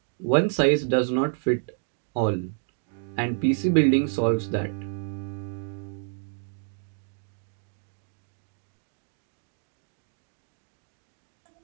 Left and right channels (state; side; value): silent; left; digital silence